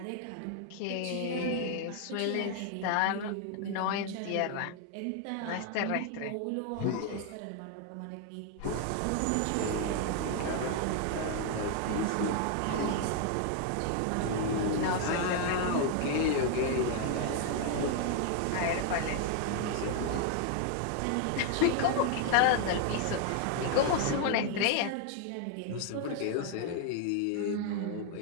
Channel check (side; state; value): both; different; correlation 0.00